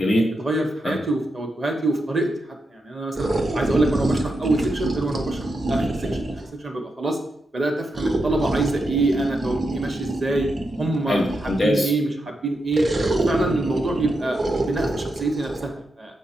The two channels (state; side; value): normal; both; correlation 0.85